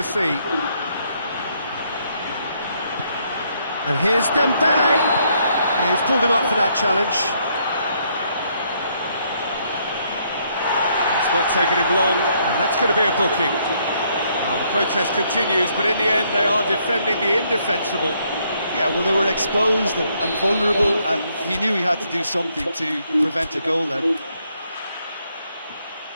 see. And here's Dembele. He's pulled him up for that challenge. It's not taken him long, and that's going to be a booking. Well, the protest continues, but in the end they are defending the indefensible. Yeah, well, they were exposed and vulnerable, and he knew he had to do something to prevent a goal then.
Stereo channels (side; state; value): both; inverted; correlation -0.71